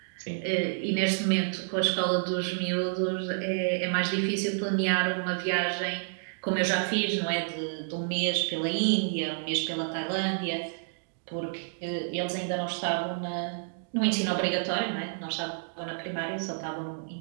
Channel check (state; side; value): silent; left; digital silence